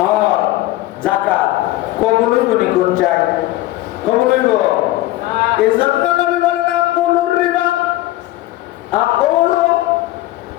যাকাত কবুল হইব নি? কোন চাই? কবুল হইব? এই জন্য নবী বলেন, আকুলুর রিবা,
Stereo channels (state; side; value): quieter; right; 16.8 dB